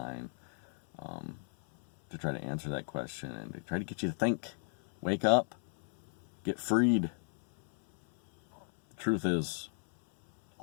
to try to answer that question and to try to get you to think. Wake up. Get freed. The truth is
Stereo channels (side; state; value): right; silent; 55 dB below the other